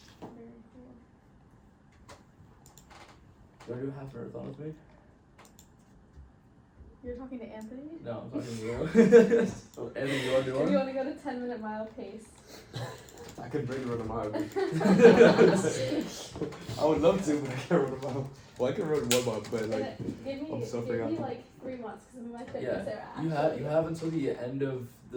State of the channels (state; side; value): identical; both; correlation 1.00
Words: Very cool. Do I do a half marathon with me? You're talking to Anthony? No, I'm talking to you. Oh, Anthony, you wanna do If you one? wanna go to 10-minute mile pace. I could bring run a mile. I would love to, but I can't run a mile. Well, I can run 1 mile, but like, Give I'm me suffering out. like 3 months, cause my fitness Yeah, there you actually. have until the end of